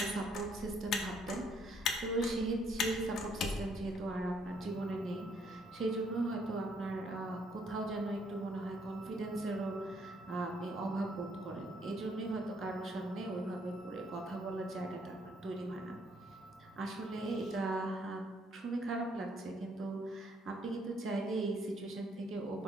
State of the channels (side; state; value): both; normal; correlation 0.68